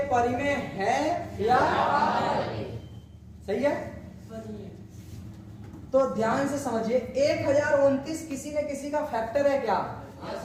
परिमेय है या सही है? तो ध्यान से समझिए, 1029 किसी न किसी का फैक्टर है क्या?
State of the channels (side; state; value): both; identical; correlation 1.00